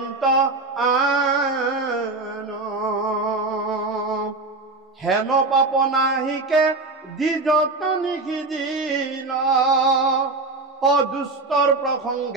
আন, হেন পাপ নাহিকে দি যত নিষিদিল, অদুষ্টৰ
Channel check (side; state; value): left; quieter; 3.5 dB